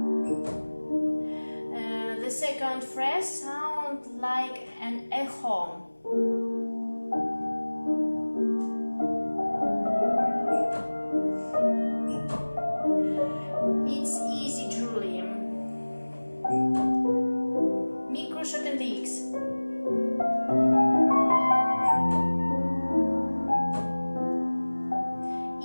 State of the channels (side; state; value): both; inverted; correlation -1.00